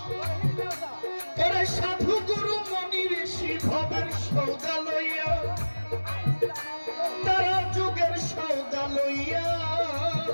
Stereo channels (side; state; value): both; inverted; correlation -1.00